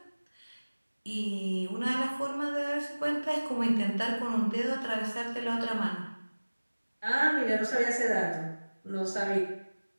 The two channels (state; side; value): inverted; both; correlation -1.00